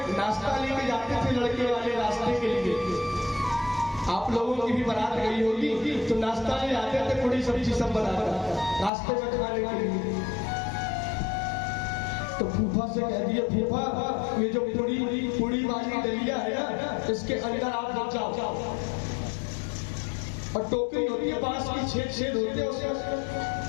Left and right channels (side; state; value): right; drops out; at 8.9 s